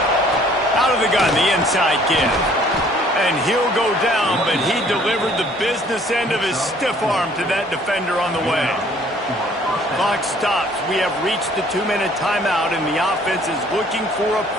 Gun, the inside give. And he'll go down, but he delivered the business end of his stiff arm to that defender on the way. Clock stops. We have reached the 2-minute timeout, and the offense is looking for a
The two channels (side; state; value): both; normal; correlation 0.58